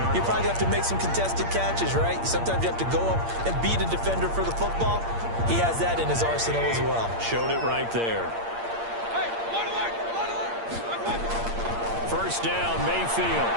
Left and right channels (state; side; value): late; left; 8.7 ms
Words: you probably have to make some contested catches, right? Sometimes you have to go up and beat a defender for the football. He has that in his arsenal as well. Showed it right there. 1st down, Mayfield.